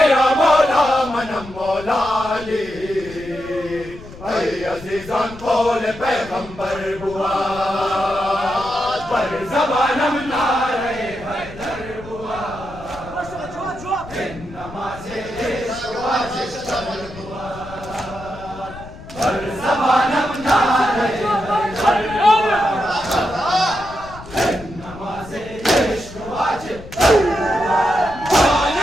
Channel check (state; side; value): noise; left; rumble, 16 dB below the sound